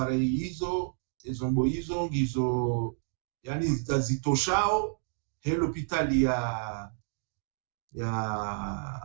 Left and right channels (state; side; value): silent; left; digital silence